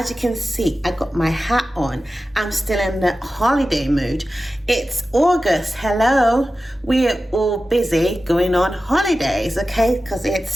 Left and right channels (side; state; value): both; normal; correlation 0.94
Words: you can see, I got my hat on. I'm still in the holiday mood. It's August. Hello. We're all busy going on holidays, okay? Because it's